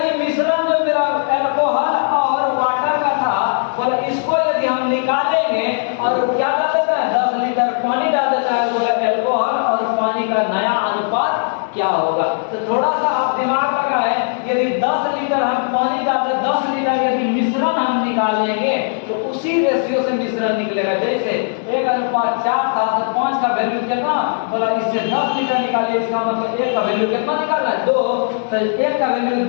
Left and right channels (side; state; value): right; silent; 67 dB below the other